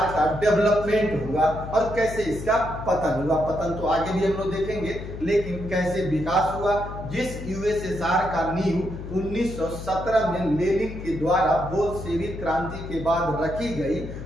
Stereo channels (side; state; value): left; noise; hum, 9 dB below the sound